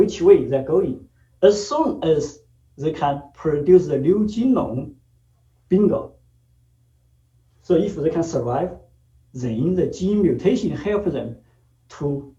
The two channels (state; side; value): identical; both; correlation 1.00